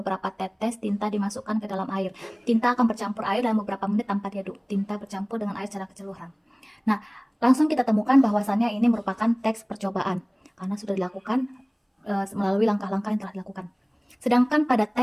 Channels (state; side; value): identical; both; correlation 1.00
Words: tetes tinta dimasukkan ke dalam air. Tinta akan bercampur air dalam beberapa menit tanpa diaduk. Tinta bercampur dengan air secara keseluruhan. Nah, langsung kita temukan bahwasannya ini merupakan teks percobaan karena sudah dilakukan melalui langkah-langkah yang telah dilakukan. Sedangkan pada